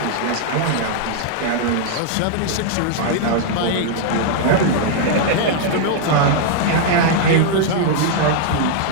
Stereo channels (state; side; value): different; both; correlation -0.01